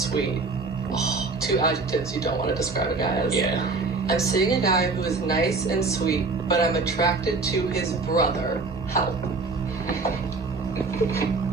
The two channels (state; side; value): quieter; left; 3.9 dB